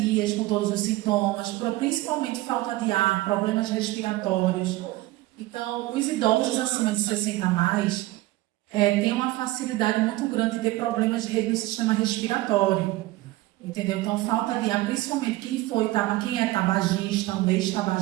com todos os sintomas, principalmente falta de ar, problemas respiratórios. Então, os idosos acima de 60 a mais têm uma facilidade muito grande de ter problemas no sistema respiratório. Entendeu? Então, falta de ar, principalmente quem é tabagista, um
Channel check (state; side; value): quieter; left; 18.1 dB